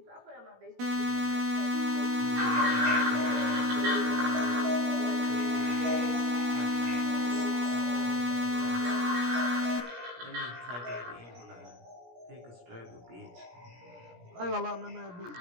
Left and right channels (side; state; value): left; late; 17 ms